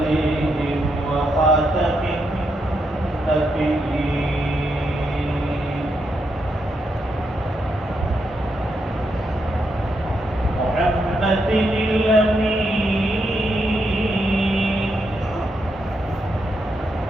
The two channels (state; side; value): normal; both; correlation 0.81